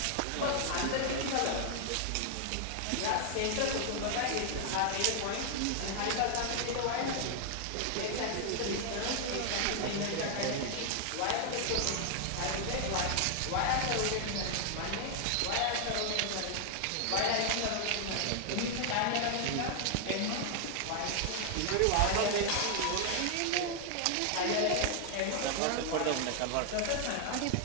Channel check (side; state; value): both; different; correlation 0.00